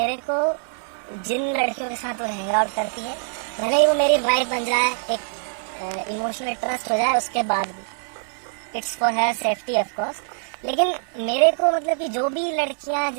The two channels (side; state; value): left; silent; digital silence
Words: को जिन लड़कियों के साथ वो हैंग आउट करती है, भले ही वो मेरी वाइफ बन जाए, एक इमोशनल ट्रस्ट हो जाए, उसके बाद भी it's for her safety of course. लेकिन मेरे को मतलब कि जो भी लड़कियां